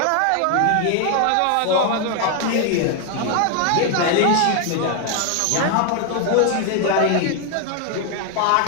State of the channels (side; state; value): both; different; correlation 0.00